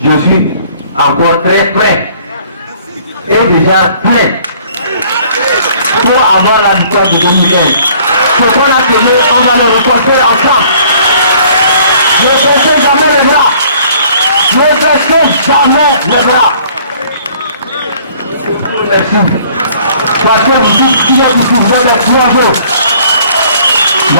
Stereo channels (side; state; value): both; inverted; correlation -0.57